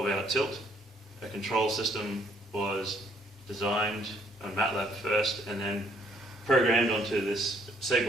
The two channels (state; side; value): normal; both; correlation 0.66